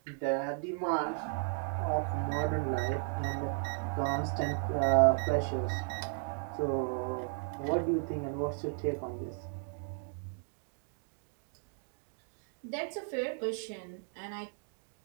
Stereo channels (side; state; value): left; silent; 54 dB below the other